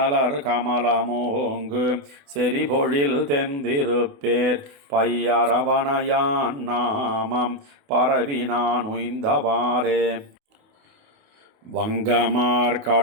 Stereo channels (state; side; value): late; left; 28 ms